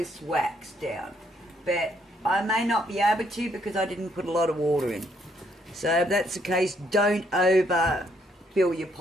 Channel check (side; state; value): both; normal; correlation 0.71